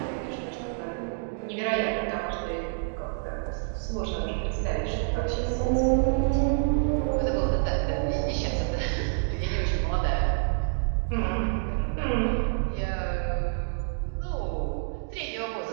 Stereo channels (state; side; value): silent; left; digital silence